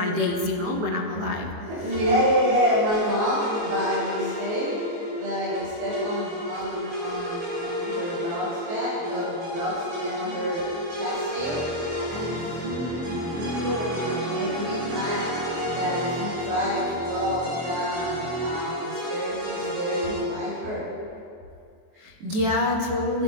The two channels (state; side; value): late; left; 23 ms